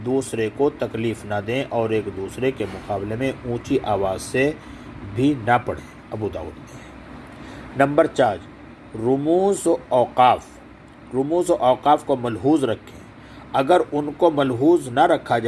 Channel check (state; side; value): identical; both; correlation 1.00